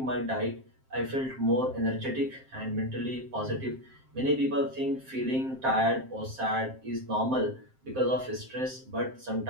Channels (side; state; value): left; late; 7.6 ms